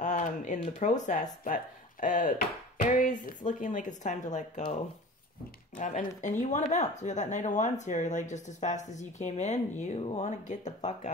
the process. But Aries, it's looking like it's time to let go. And you want to bounce. We got that Knight of Wands here. Like, just as fast as you came in, you want to get the fuck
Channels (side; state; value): both; normal; correlation 0.39